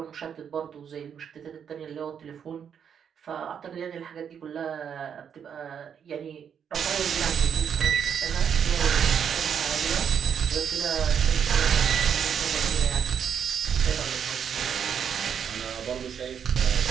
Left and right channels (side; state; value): left; quieter; 7.8 dB